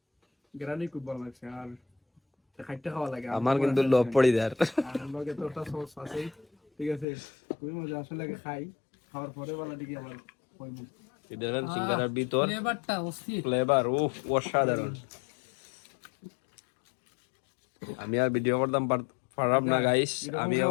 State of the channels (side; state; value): right; drops out; at 7.1 s